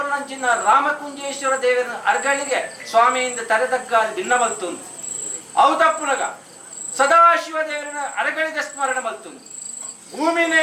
ರಾಮಕುಂಜೇಶ್ವರ ದೇವರ ಅರಗಳಿಗೆ ಸ್ವಾಮಿಯಿಂದ ತರೆದಗ್ಗ ಭಿನ್ನ ಮಲ್ತುಂದು ಹೌದಪ್ಪುನಗ ಸದಾಶಿವ ದೇವರನ್ನ ಅರಗಳಿಗೆ ಸ್ಮರಣೆ ಮಲ್ತುಂದು ಭೂಮಿನೇ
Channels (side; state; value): both; identical; correlation 1.00